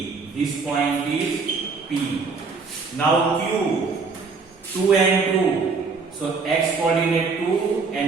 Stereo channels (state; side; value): quieter; left; 4.6 dB